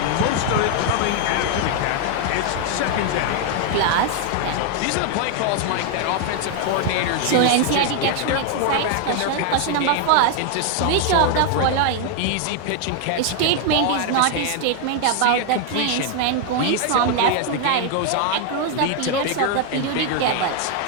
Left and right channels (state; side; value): different; both; correlation 0.00